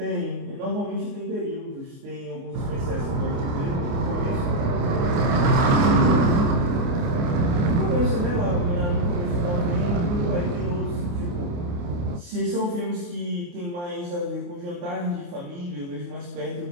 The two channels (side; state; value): left; late; 29 ms